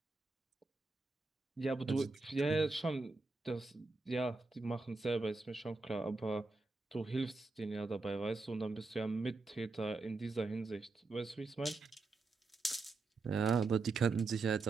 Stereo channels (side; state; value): left; quieter; 3.7 dB